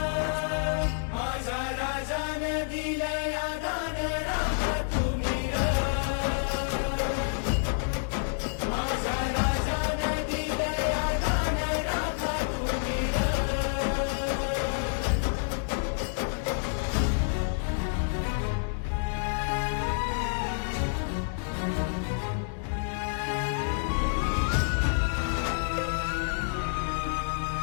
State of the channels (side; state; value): right; silent; digital silence